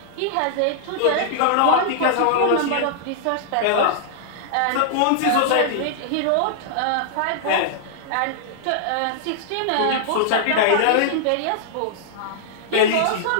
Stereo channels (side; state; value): both; different; correlation -0.01